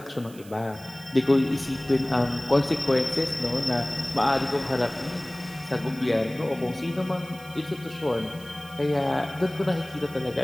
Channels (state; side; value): noise; right; hiss, 21 dB below the sound